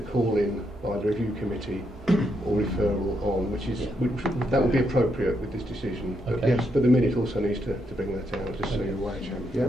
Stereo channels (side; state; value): both; normal; correlation 0.79